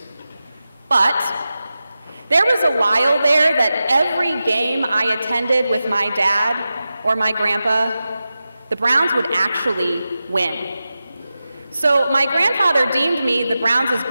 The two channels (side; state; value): both; inverted; correlation -0.93